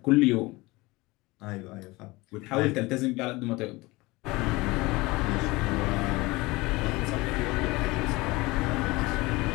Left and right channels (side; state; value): right; quieter; 22.1 dB